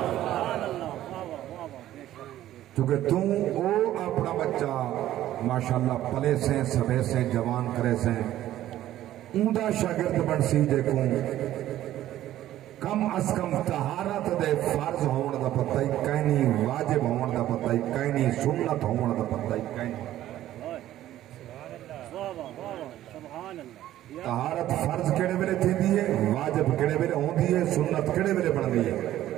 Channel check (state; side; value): quieter; left; 13.4 dB